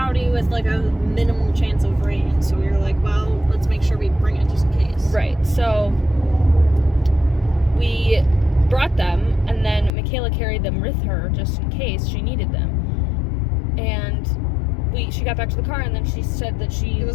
with like a minimal chance of rain, so we were like, well, let's make sure we bring it just in case. Right, so we brought them, and then Michaela carried them with her just in case she needed them. And she got back to the car, and then she said that it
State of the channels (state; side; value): drops out; right; at 9.9 s